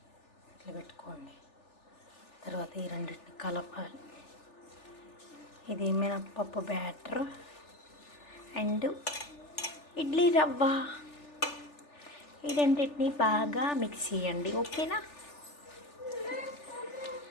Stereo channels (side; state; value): right; late; 3.4 ms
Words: ఇట్లా పెట్టుకోండి. తర్వాత ఈ రెండింటిని కలపాలి. ఇది మినప్పప్పు బ్యాటర్ అండ్ ఇడ్లీ రవ్వ, ఈ రెండింటిని బాగా మిక్స్ చేయండి. ఓకేనా